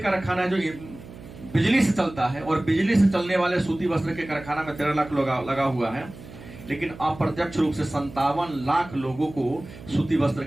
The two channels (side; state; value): right; noise; hum, 16 dB below the sound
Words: है जो बिजली से चलता है, और बिजली से चलने वाले सूती वस्त्र के कारखाना में 13 लाख लगा हुआ है। लेकिन अप्रत्यक्ष रूप से 57 लाख लोगों को सूती वस्त्र